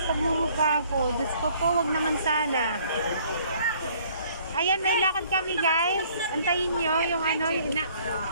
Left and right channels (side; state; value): both; inverted; correlation -0.59